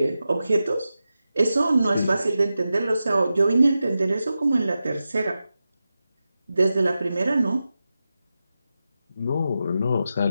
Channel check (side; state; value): both; inverted; correlation -0.92